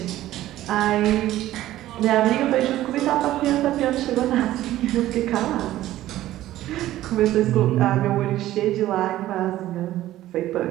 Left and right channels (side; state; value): left; quieter; 14.4 dB